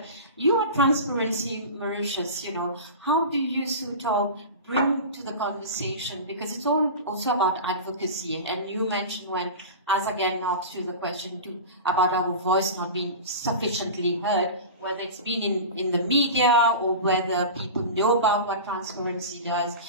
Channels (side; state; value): both; inverted; correlation -0.30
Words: you are Transparency Mauritius. How do you sort of bring to the conversation, because it's all also about advocacy, and you mentioned as again asked you the question about our voice not being sufficiently heard, whether it's been in the media or whether people know about what transparency does.